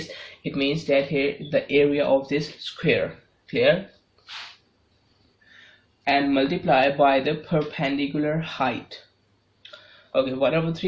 it means that here the area of this square, clear, and multiply by the perpendicular height. Okay,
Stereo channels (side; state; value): both; identical; correlation 1.00